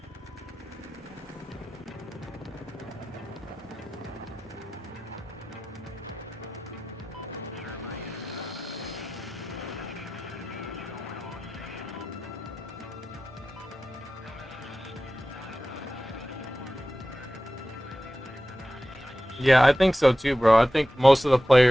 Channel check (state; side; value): normal; both; correlation 0.94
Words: Yeah, I think so too, bro. I think most of the